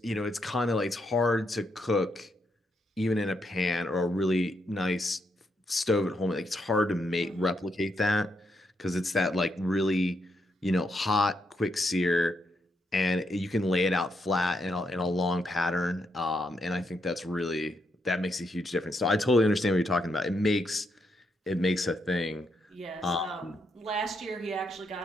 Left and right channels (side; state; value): both; normal; correlation 0.79